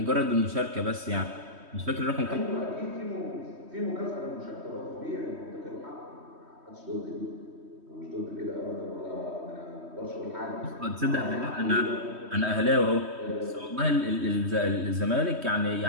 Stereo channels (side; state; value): left; late; 3.2 ms